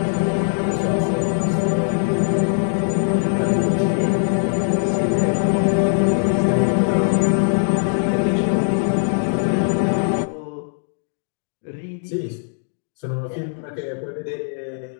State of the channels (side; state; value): right; silent; digital silence